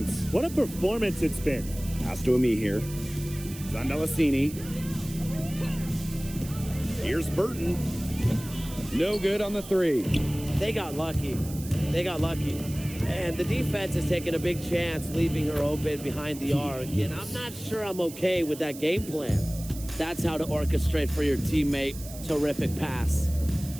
What a performance it's been. Pass to Ami here. Zandelasini. Here's Burton. No good on the 3. They got lucky. And the defense is taking a big chance, leaving her open behind the arc. And I'm not sure I'm okay with that game plan. That's how to orchestrate for your teammate. Terrific pass.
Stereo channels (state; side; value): noise; right; hiss, 15 dB below the sound